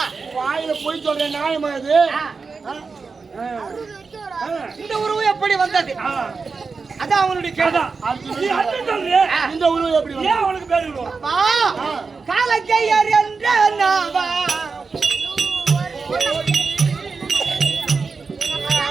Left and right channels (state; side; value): quieter; left; 4.7 dB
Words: வாயில போய் சொல்றேன் நியாயமா இது? இந்த உருவம் எப்படி வந்தது? அதான் அவனுடைய கேள்வி. இந்த உருவம் எப்படி வந்தது? அவனுக்கு பேரு காலக்கையர் என்ற நாவா